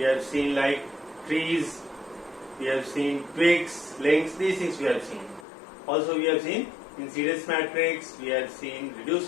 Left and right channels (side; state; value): right; drops out; at 5.5 s